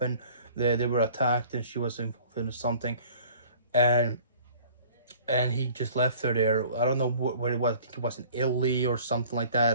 They were attacked and she was involved in something, and he just left her there. I don't know where it was. I think it was in Italy or something like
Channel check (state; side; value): inverted; both; correlation -0.49